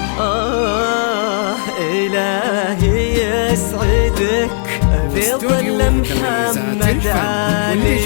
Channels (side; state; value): right; silent; digital silence